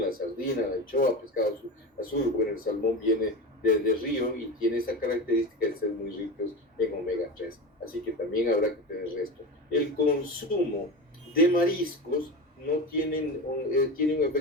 sardina, la anchoa, pescado azul. Bueno, el salmón viene del río y tiene esa característica de ser muy ricos en omega 3. Así que también habrá que tener esto. El consumo de mariscos no tiene un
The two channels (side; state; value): both; normal; correlation 0.24